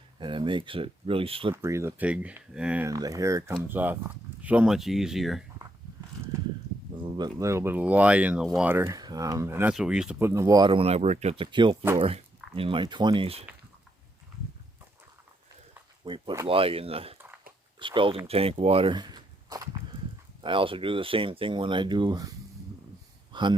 and it makes it really slippery, the pig, and the hair comes off so much easier. A little bit of lye in the water, and that's what we used to put in the water when I worked at the kill floor in my 20s. We put lye in the scalding tank water. I also do the same thing when I do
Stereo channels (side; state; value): both; normal; correlation 0.77